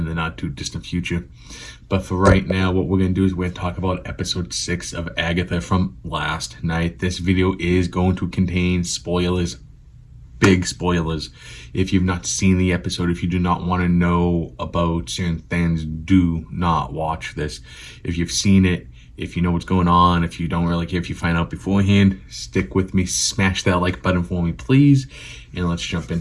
the not too distant future. But for right now, what we're going to do is we're going to talk about episode 6 of Agatha from last night. This video is going to contain spoilers, big spoilers. If you've not seen the episode, if you do not want to know about certain things, do not watch this. If you've seen it, if you know what's going on, if you don't really care if you find out beforehand, stick with me, smash that like button for me, please, and let's jump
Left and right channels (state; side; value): identical; both; correlation 1.00